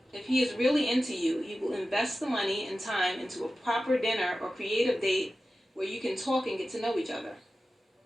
If he is really into you, he will invest the money and time into a proper dinner or creative date where you can talk and get to know each other.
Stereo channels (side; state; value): both; normal; correlation 0.94